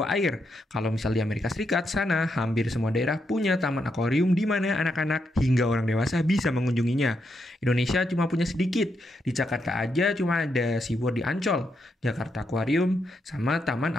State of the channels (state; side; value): normal; both; correlation 0.81